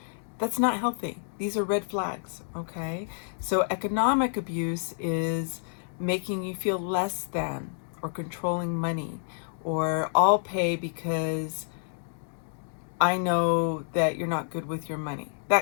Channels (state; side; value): silent; right; digital silence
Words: That's not healthy. These are red flags, okay? So economic abuse is making you feel less than, or controlling money, or I'll pay because I know that you're not good with your money,